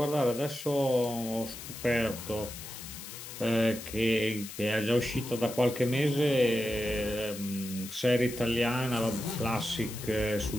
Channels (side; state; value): left; noise; hiss, 11 dB below the sound